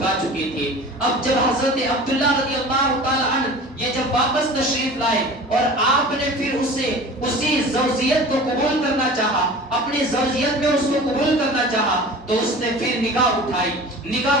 چکی تھی، اب جب حضرت عبداللہ رضی اللہ تعالیٰ عنہ یہ جب واپس تشریف لائے اور آپ نے پھر اسے اسی زوجیت کو قبول کرنا چاہا، اپنی زوجیت میں اس کو قبول کرنا چاہا، تو اس نے پھر نگاہ اٹھائی،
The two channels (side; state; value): both; normal; correlation 0.39